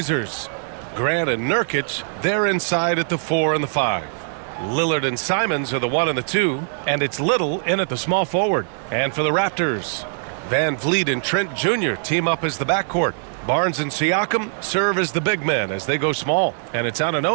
Grant and Nurkic, they're inside at the 4 and the 5. Lillard and Simons are the 1 and the 2, and it's Little in at the small forward. And for the Raptors, Van Vliet and Trent Jr. team up as the backcourt. Barnes and Siakam serve as the big men as they go small. And it's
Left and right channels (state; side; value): silent; left; digital silence